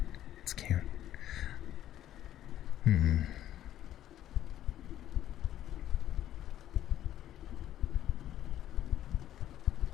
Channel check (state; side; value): quieter; right; 12.1 dB